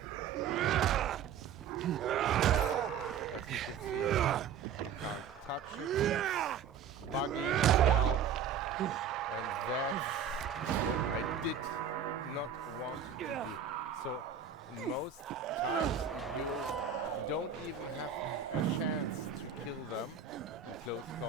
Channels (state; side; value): quieter; left; 7.5 dB